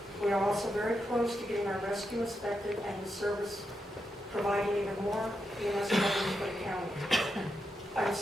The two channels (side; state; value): both; normal; correlation 0.85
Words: We are also very close to getting our rescue inspected and in service, providing even more EMS coverage for the county. I am